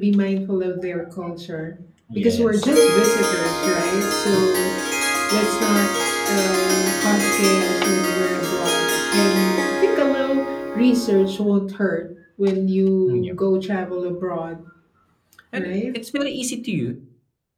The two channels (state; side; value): identical; both; correlation 1.00